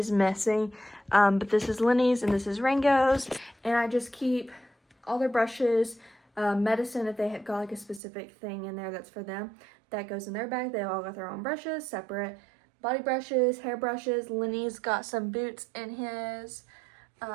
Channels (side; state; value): left; drops out; at 8.0 s